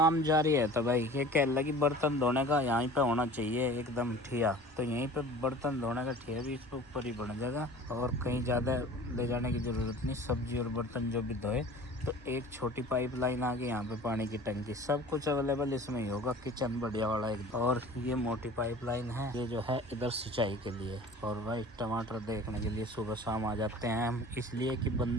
जारी है। तो भाई ये कह लगी बर्तन धोने का यहीं पे होना चाहिए एकदम ठिया, तो यहीं पे बर्तन धोने का ठिया भी इसके ऊपर ही बन जाएगा, और कहीं ज़्यादा ले जाने की ज़रूरत नहीं। सब्जी और बर्तन जो भी धोए, तो एक छोटी पाइपलाइन आ गई यहाँ पे, पानी की टंकी, सब कुछ अवेलेबल इसमें ही होगा। किचन बढ़िया वाला एक, और ये मोटी पाइपलाइन है ये जो है इधर सिंचाई के लिए। और भाई टमाटर देखने के लिए सुबह शाम आ जाते हैं हम, इसलिए कि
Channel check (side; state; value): both; normal; correlation 0.42